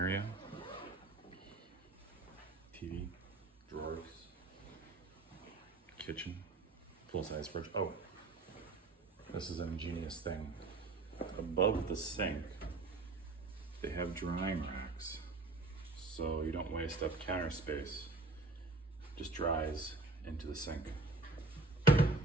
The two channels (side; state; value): left; quieter; 3.4 dB